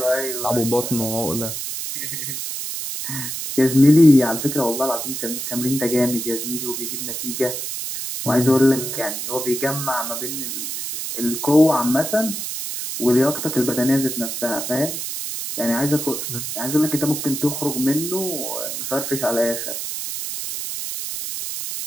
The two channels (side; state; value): right; noise; hiss, 5 dB below the sound